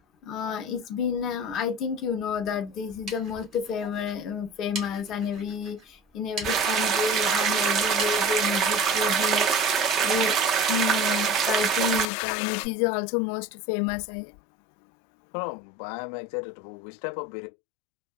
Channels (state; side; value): drops out; right; at 12.1 s